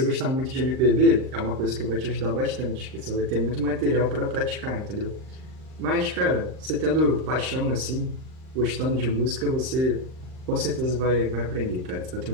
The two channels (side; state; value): left; late; 39 ms